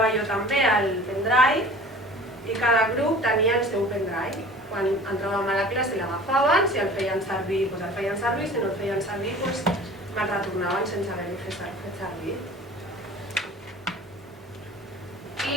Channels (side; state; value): both; normal; correlation 0.43